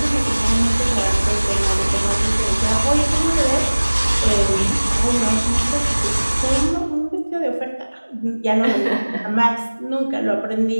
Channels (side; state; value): both; inverted; correlation -1.00